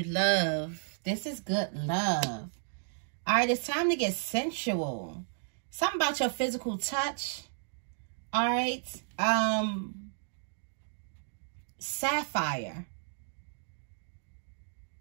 love. This is good love. All right, it's time to get sensual. Something about your physical touch. All right. Sapphire.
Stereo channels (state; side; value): silent; left; digital silence